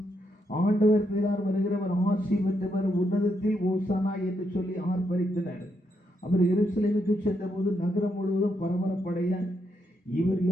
ஆண்டவர் பேரால் வருகிறவர் ஆசி பெற்றவர், உன்னதத்தில் ஓசனா என்று சொல்லி ஆர்ப்பரித்தனர். அவர் எருசலேமுக்கு சென்றபோது நகரம் முழுவதும் பரபரப்படைய இவர்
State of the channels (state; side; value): normal; both; correlation 0.79